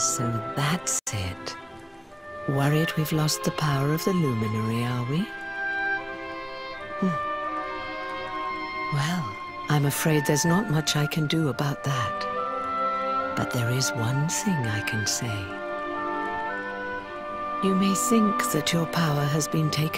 that's it. Worried we've lost the power of the luminary, are we? Well, I'm afraid there's not much I can do about that. But there is one thing I can say. You may think that your power has been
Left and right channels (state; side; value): identical; both; correlation 1.00